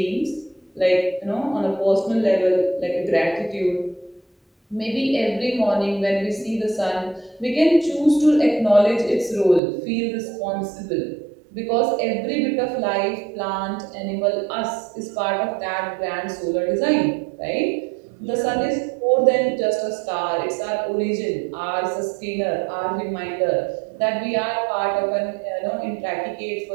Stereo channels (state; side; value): drops out; left; at 9.6 s